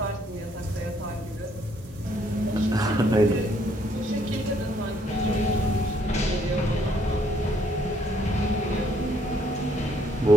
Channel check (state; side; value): normal; both; correlation 0.67